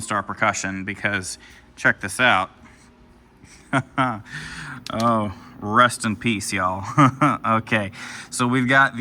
Star Percussion, because check this out. Oh, rest in peace, y'all. Okay, so we've got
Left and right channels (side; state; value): both; identical; correlation 1.00